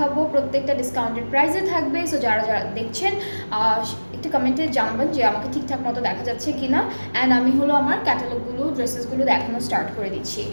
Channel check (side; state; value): both; inverted; correlation -1.00